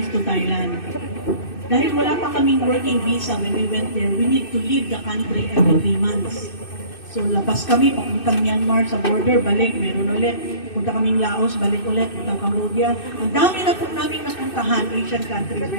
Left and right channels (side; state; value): right; late; 2.6 ms